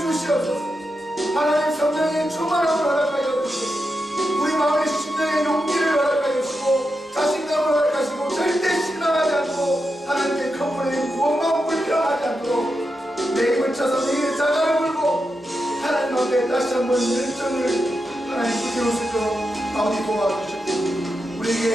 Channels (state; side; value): normal; both; correlation 0.87